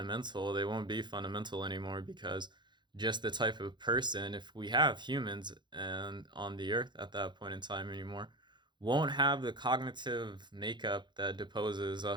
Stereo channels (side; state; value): left; late; 0.22 ms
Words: they won't be fundamental anymore, because just the type of person, if we have humans and on the earth at that point in time anymore, won't have the cognitive makeup that deposes